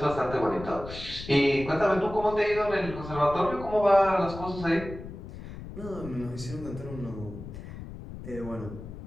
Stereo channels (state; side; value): noise; left; rumble, 12 dB below the sound